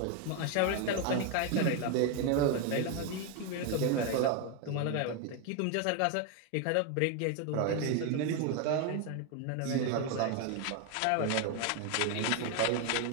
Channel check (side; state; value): both; different; correlation 0.01